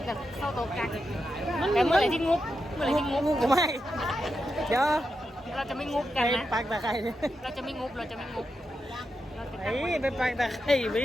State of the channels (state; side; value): normal; both; correlation 0.87